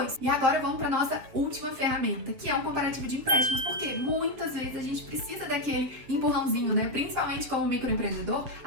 E agora vamos para nossa última ferramenta, que é um comparativo de empréstimos, porque muitas vezes a gente precisa daquele empurrãozinho, né? Principalmente como microempreendedor,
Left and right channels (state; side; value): late; left; 7.4 ms